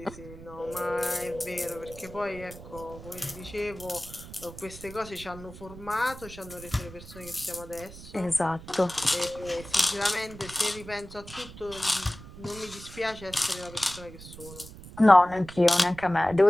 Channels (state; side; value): noise; right; rumble, 15 dB below the sound